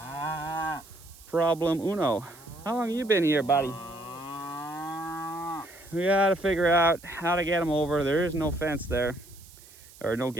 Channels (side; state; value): right; noise; hiss, 22 dB below the sound